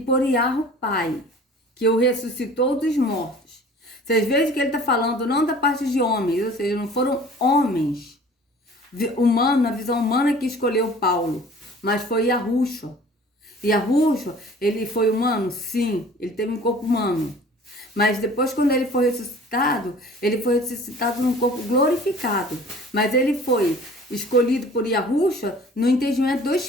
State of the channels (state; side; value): normal; both; correlation 0.47